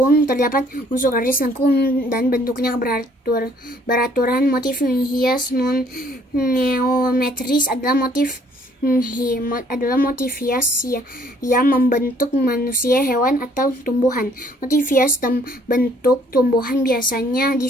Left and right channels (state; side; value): normal; both; correlation 0.62